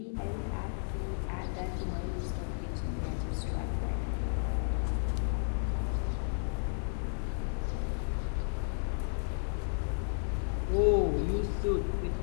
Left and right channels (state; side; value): silent; right; digital silence